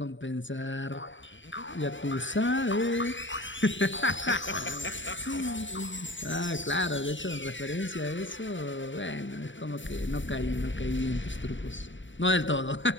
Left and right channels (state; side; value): late; right; 0.55 ms